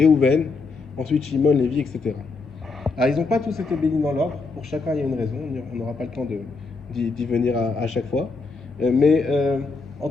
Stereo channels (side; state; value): right; quieter; 4.1 dB